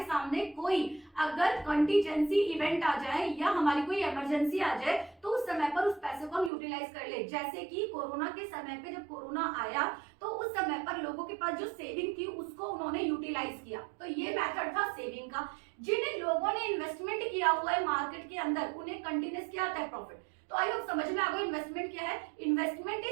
सामने कोई अगर कंटीजेंसी इवेंट आ जाए या हमारी कोई इमरजेंसी आ जाए तो उस समय पर उस पैसे को हम यूटिलाइज कर ले। जैसे कि कोरोना के समय पे जब कोरोना आया तो उस समय पर लोगों के पास जो सेविंग थी उसको उन्होंने यूटिलाइज किया, तो ये मेथड था सेविंग का। जिन लोगों ने इन्वेस्टमेंट किया हुआ है मार्केट के अंदर उन्हें कंटिन्यूस क्या आता है, प्रॉफिट। तो आई होप समझ में आ गया इन्वेस्टमेंट क्या है। Investment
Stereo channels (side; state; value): left; drops out; at 6.5 s